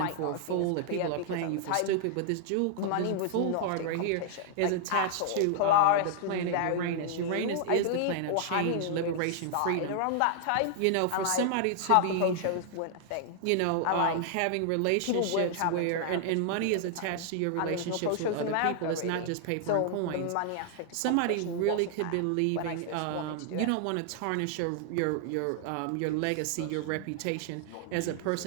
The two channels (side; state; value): both; different; correlation -0.01